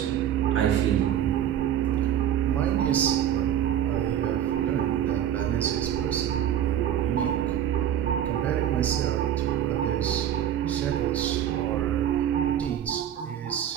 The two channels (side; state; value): left; quieter; 10.5 dB